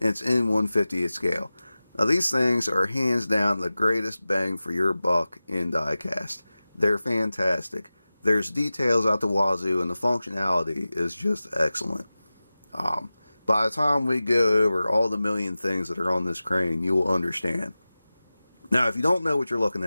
it's in 1/50th scale. Now these things are hands down the greatest bang for your buck in diecast. They're fantastic. There's details out the wazoo and the functionality is just excellent. By the time we go over all the million things that are on this crane, you will understand. Now if you don't know what you're looking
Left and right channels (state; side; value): inverted; both; correlation -0.96